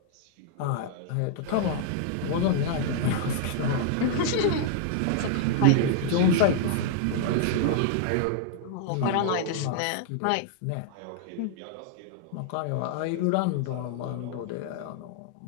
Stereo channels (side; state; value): both; different; correlation -0.01